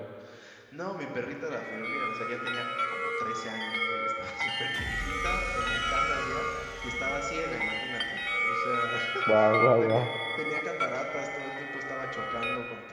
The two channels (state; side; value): identical; both; correlation 1.00